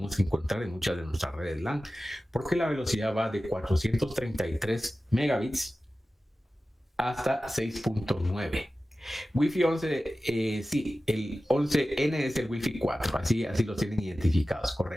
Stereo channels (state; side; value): normal; both; correlation 0.95